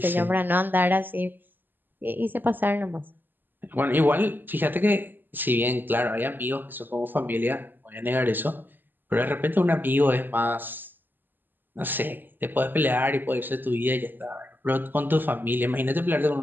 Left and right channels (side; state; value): left; late; 0.091 ms